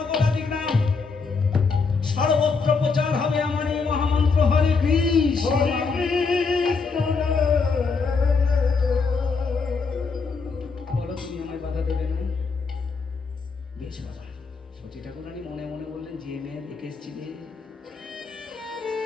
নাম, সর্বত্র প্রচার হবে আমার এই মহামন্ত্র হরে কৃষ্ণ। বলো, তুমি আমায় বাধা দেবে না? বেশ বাবা। শচী ঠাকুরানী মনে মনে বললেন, যে মেয়ে দেখে এসেছিলে,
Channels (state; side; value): quieter; right; 4.7 dB